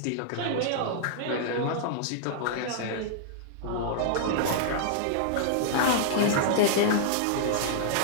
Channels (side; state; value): both; different; correlation -0.01